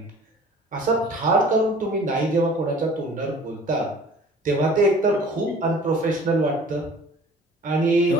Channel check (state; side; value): normal; both; correlation 0.48